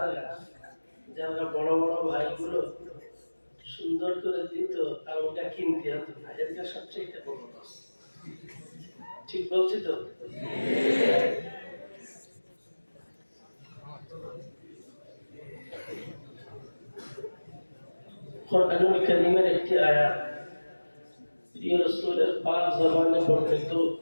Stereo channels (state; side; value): inverted; both; correlation -1.00